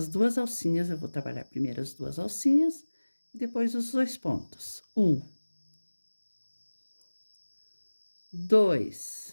2 alcinhas, eu vou trabalhar primeiro as 2 alcinhas e depois os 2 pontos. 1,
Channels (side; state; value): both; inverted; correlation -1.00